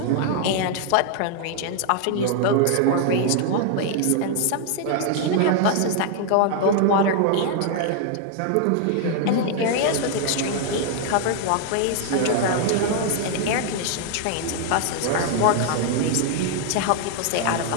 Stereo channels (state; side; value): different; both; correlation 0.00